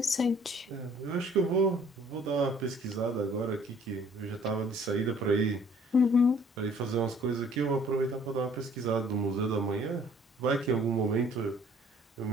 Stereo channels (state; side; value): normal; both; correlation 0.57